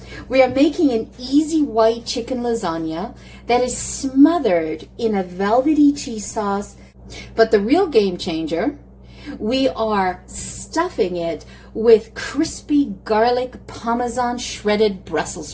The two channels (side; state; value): both; identical; correlation 1.00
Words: We are making an easy white chicken lasagna that is smothered in a velvety cheese sauce. But the real game changer, we are stuffing it with crispy garlic Parmesan shredded Brussels